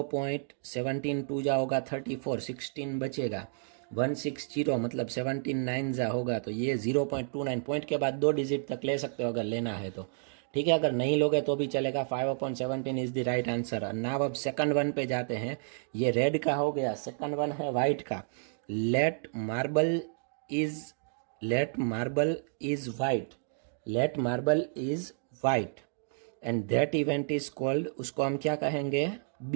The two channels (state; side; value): silent; left; digital silence